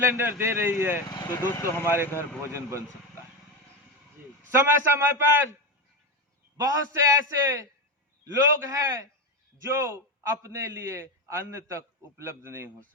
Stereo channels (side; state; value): both; normal; correlation 0.15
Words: दे रही है, तो दोस्तों हमारे घर भोजन बन सकता है। समय समय पर बहुत से ऐसे लोग हैं जो अपने लिए अन्न तक उपलब्ध नहीं हो